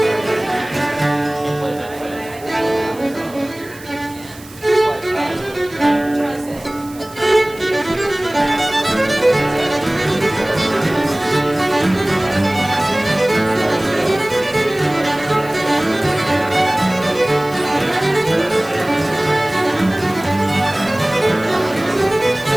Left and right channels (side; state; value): right; noise; hiss, 21 dB below the sound